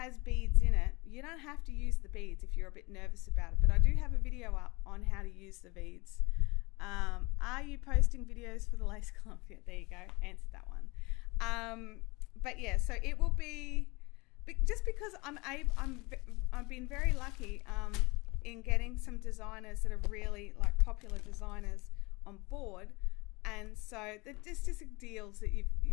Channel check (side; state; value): right; quieter; 25.3 dB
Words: beads in it, you don't have to use the beads if you're a bit nervous about it. But I do have a video up on how to use the beads. Are you posting videos for the lace club? Yeah, there you go, answered that one. But yeah, so it will be, just because I've been very lucky in getting some designers that are really like popular designers on board. And so there's just deals